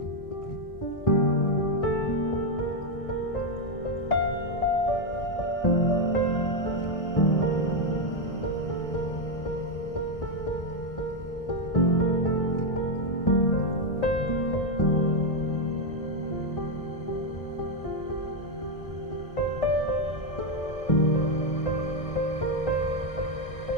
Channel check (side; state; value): right; late; 1.6 ms